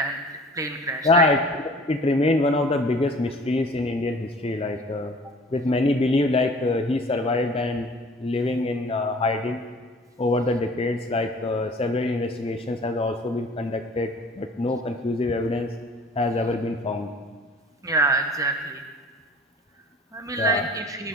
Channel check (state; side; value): normal; both; correlation 0.48